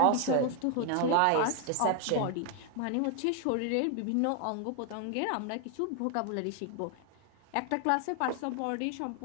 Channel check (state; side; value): different; both; correlation 0.01